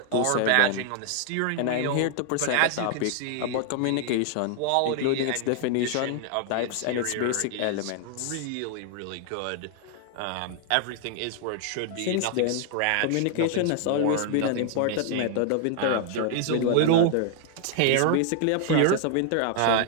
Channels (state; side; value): different; both; correlation 0.00